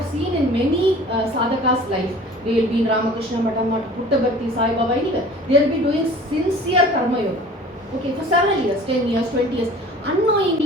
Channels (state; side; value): normal; both; correlation 0.45